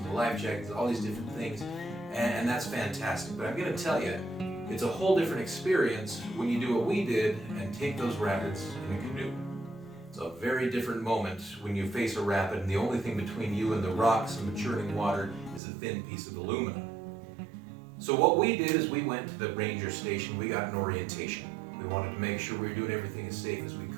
the life jackets, all these different things, and that's fantastic. But I'm going to tell you, it's a whole different experience when you do what we did and take those rapids in a canoe. It's a very different moment when you face a rapid and the only thing between you and the rocks and the churning water is a thin piece of aluminum. So what we did is we went to the ranger station, we got an orientation. We wanted to make sure we were doing everything as safe as we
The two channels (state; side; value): drops out; left; at 15.6 s